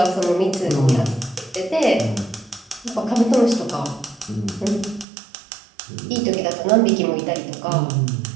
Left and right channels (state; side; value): drops out; left; at 5.1 s